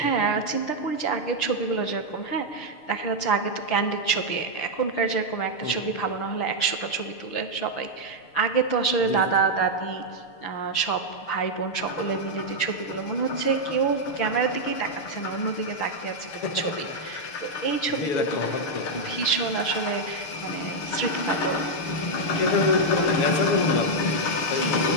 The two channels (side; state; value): right; late; 6.7 ms